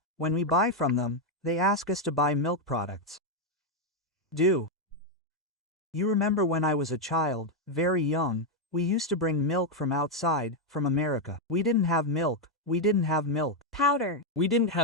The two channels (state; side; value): normal; both; correlation 0.02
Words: when we buy from them, they ask us to buy milk products. Do you remember when I was a child, very young, we used to bring milk from outside, from America. We didn't have milk. We didn't have milk powder. We didn't